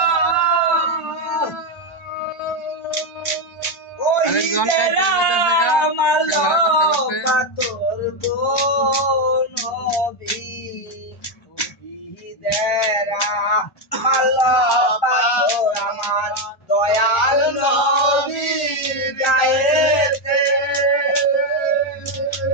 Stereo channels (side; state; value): right; late; 1.3 ms